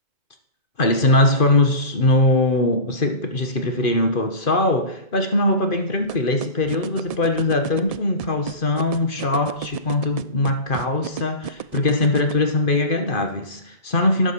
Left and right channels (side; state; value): right; late; 2.5 ms